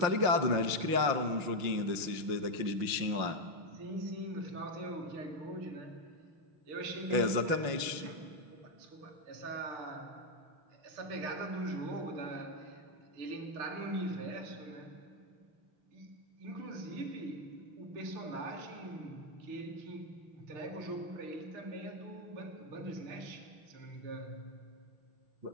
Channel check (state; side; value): late; left; 5.7 ms